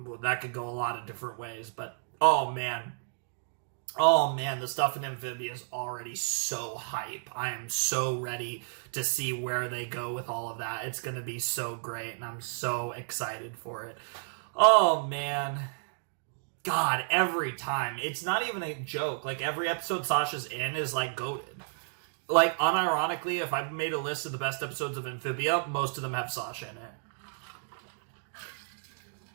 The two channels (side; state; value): left; silent; digital silence